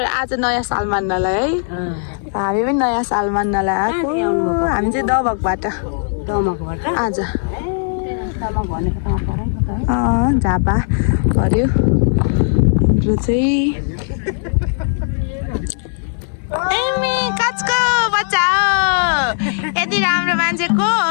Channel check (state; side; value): silent; right; digital silence